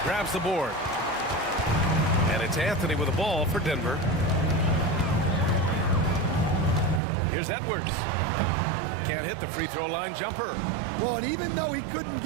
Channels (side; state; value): left; drops out; at 7.0 s